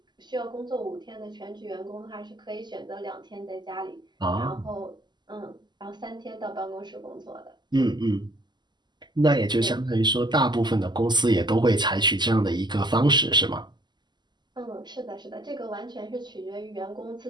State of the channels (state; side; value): late; left; 0.21 ms